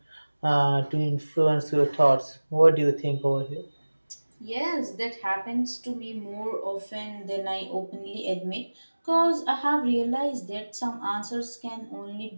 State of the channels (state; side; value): inverted; both; correlation -1.00